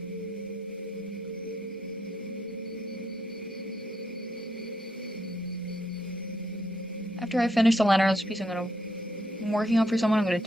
After I finish the liner recipes I'm working on for someone, I'm gonna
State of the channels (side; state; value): both; normal; correlation 0.76